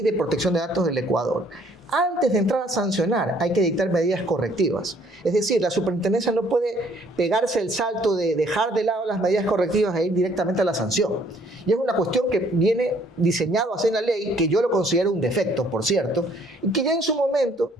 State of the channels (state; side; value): normal; both; correlation 0.62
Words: de protección de datos del Ecuador, antes de entrar a sancionar hay que dictar medidas correctivas. Es decir, la superintendencia no puede pegarse el salto de dejar de lado las medidas correctivas e ir directamente a la sanción. Y es una cuestión que viene diseñado así en la ley, que yo lo considero un defecto, por cierto, y que ya en su momento,